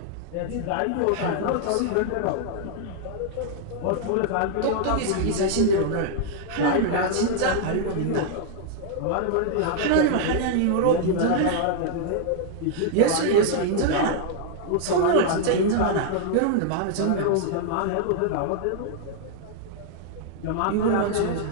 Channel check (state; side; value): different; both; correlation 0.00